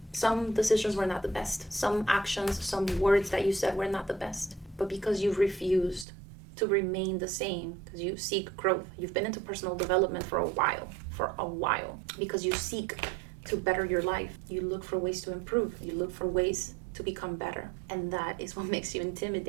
some decisions were not the best, some actions, some words that you said were not the best, but because you've refused to remain the same, because you seek growth. You've been into personal development for a while, because you seek to better your life. You look for ways to improve. You look for ways to become better. And that is what makes you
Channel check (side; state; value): left; drops out; at 6.1 s